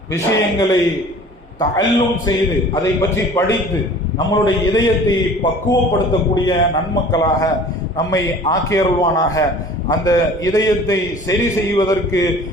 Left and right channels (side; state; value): both; normal; correlation 0.46